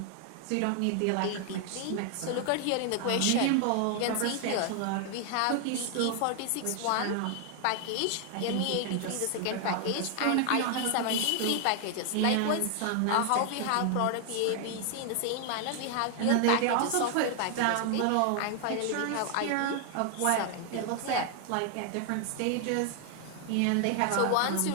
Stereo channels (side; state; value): both; different; correlation 0.00